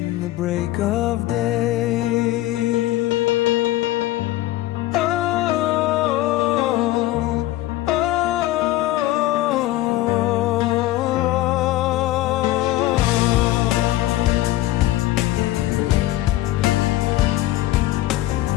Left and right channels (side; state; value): right; quieter; 16.1 dB